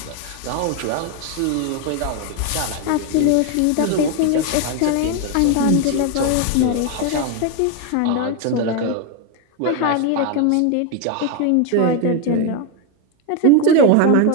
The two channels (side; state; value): both; different; correlation 0.01